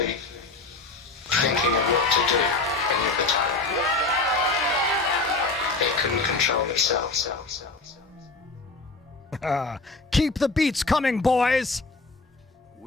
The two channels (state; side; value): quieter; right; 3.5 dB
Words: thinking of what to do any of the time. It can control itself. Keep the beats coming, boys!